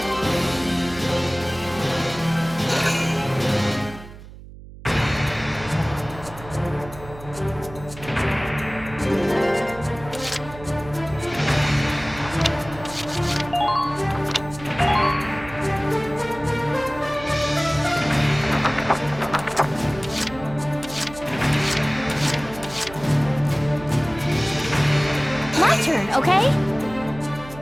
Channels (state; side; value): noise; right; hum, 16 dB below the sound